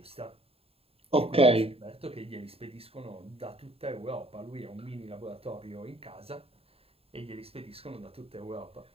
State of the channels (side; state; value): left; late; 0.28 ms